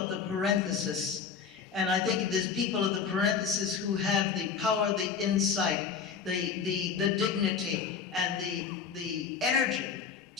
the parenthesis. And I think it is people of the parenthesis who have the power, the insight, the dignity, and the energy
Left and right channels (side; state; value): right; quieter; 6.4 dB